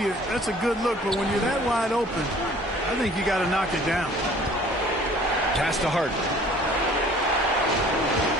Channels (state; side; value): normal; both; correlation 0.52